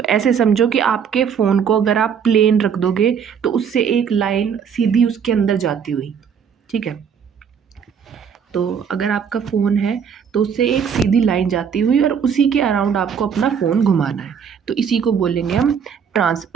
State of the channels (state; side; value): quieter; left; 7.2 dB